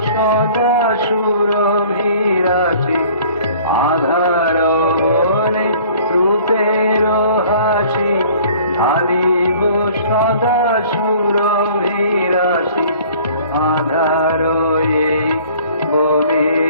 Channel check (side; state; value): both; inverted; correlation -0.51